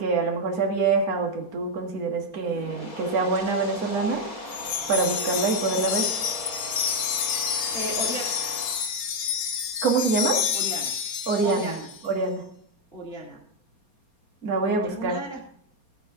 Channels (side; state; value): right; late; 4.3 ms